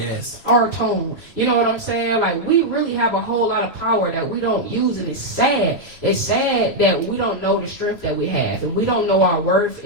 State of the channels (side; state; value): right; late; 3.0 ms